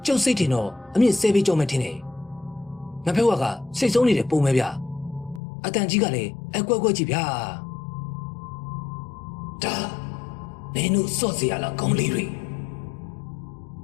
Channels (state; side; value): drops out; right; at 5.4 s